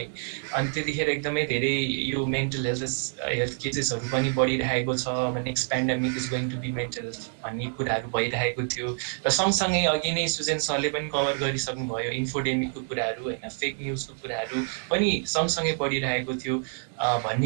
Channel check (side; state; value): left; silent; 60 dB below the other